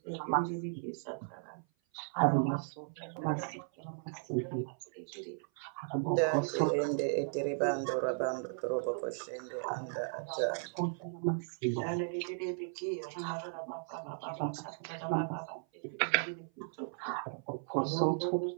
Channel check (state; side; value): silent; left; 54 dB below the other